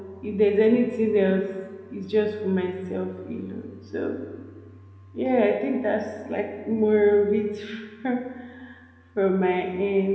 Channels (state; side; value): identical; both; correlation 1.00